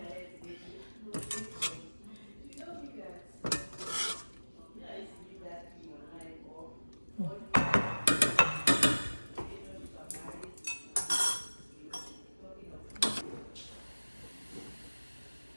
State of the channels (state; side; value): inverted; both; correlation -1.00